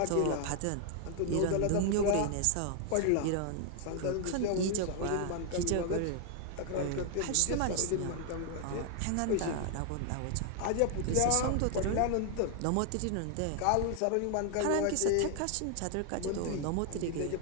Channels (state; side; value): different; both; correlation 0.00